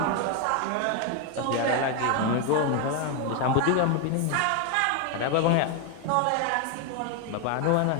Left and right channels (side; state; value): both; different; correlation 0.01